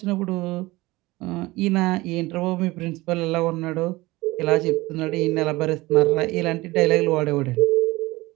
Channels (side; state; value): left; quieter; 20.4 dB